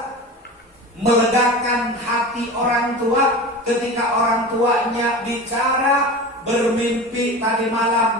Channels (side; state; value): both; normal; correlation 0.31